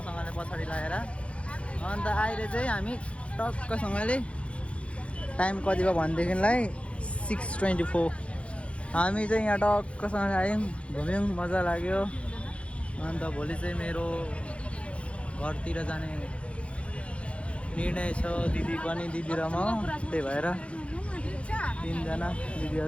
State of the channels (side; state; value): right; late; 0.061 ms